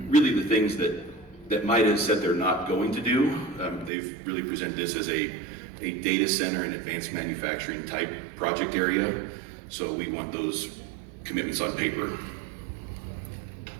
Really the things that MIDA said they're not going to do. They've really presented this as a data center and advanced manufacturing type project area. So we want those commitments on paper.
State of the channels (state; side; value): drops out; left; at 3.9 s